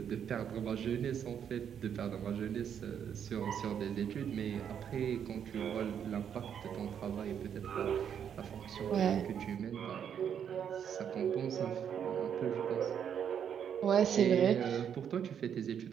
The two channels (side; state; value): left; quieter; 8.4 dB